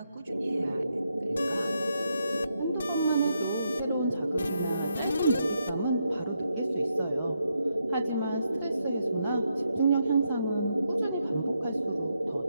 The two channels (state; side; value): inverted; both; correlation -0.81